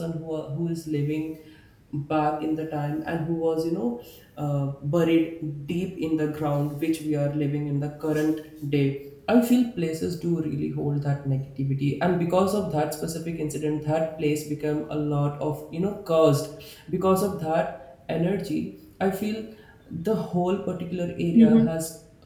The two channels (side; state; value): both; identical; correlation 1.00